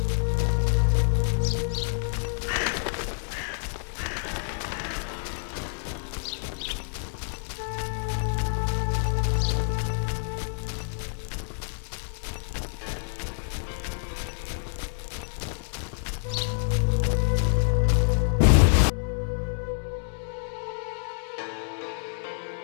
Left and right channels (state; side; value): silent; right; 60 dB below the other